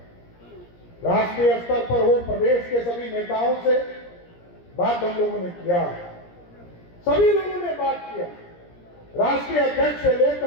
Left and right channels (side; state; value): right; late; 17 ms